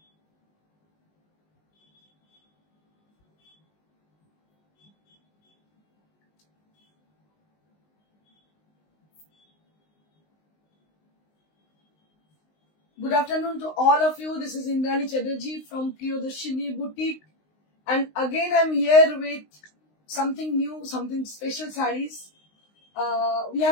Good afternoon to all of you. This is Indrani Chatterjee from Priyadarshini Boutique, and again I'm here with something new, something special sarees. We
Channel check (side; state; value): right; late; 19 ms